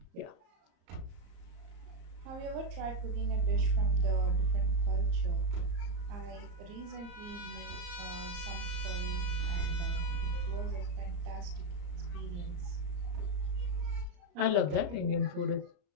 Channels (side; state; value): left; late; 34 ms